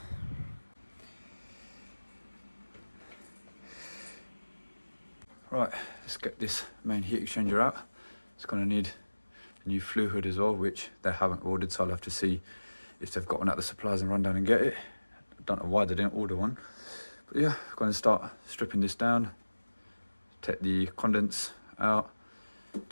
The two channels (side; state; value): both; inverted; correlation -1.00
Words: Right, let's get this main heat exchanger out. It's going to need a new flue hood as well, which they haven't ordered, so I'll have to see if they've got one at the suppliers and run down and get it. I don't know why they didn't order one. But yeah, I'm going to start stripping this down, take the condense out,